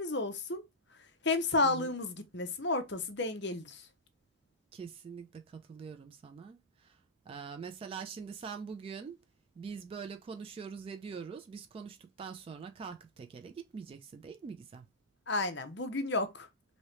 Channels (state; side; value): normal; both; correlation -0.14